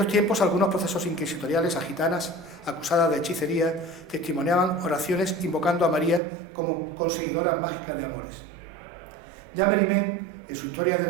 tiempos, algunos procesos inquisitoriales a gitanas acusadas de hechicería testimoniaban oraciones invocando a María como conseguidora mágica de amores. Ya Mérimée, en su Historia de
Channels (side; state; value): left; drops out; at 6.2 s